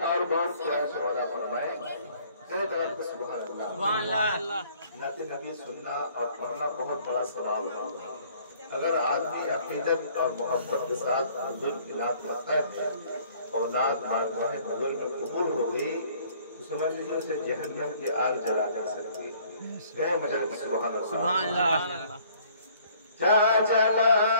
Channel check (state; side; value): inverted; both; correlation -0.58